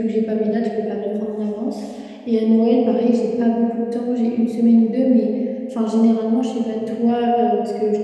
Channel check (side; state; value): both; identical; correlation 1.00